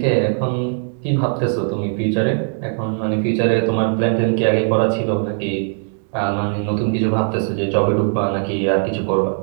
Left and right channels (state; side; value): silent; left; 59 dB below the other